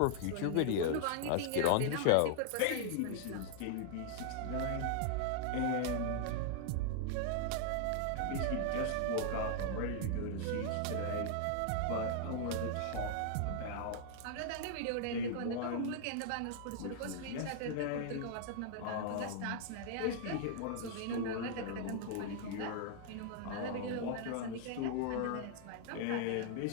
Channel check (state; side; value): different; both; correlation -0.01